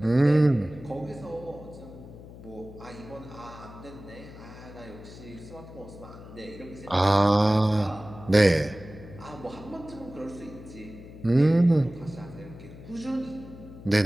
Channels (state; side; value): noise; left; hum, 16 dB below the sound